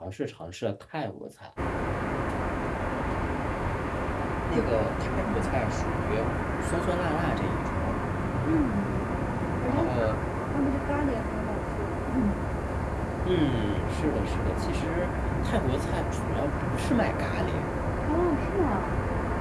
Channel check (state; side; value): identical; both; correlation 1.00